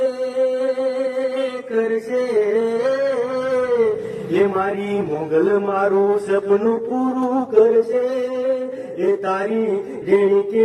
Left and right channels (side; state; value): both; identical; correlation 1.00